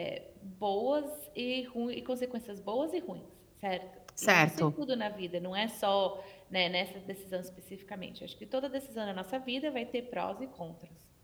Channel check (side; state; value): both; identical; correlation 1.00